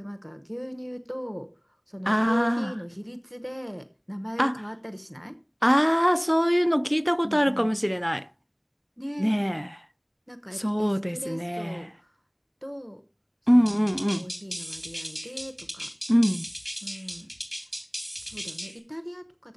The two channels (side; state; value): both; identical; correlation 1.00